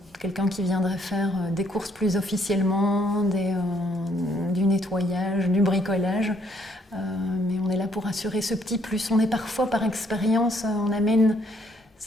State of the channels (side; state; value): both; normal; correlation 0.68